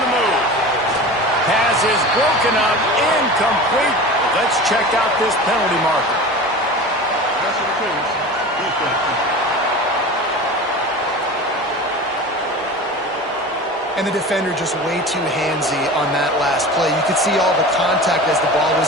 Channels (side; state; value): both; normal; correlation 0.34